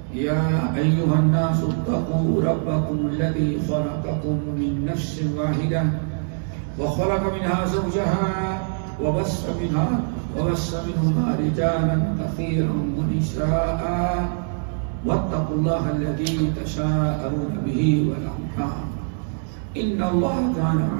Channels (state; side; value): silent; left; digital silence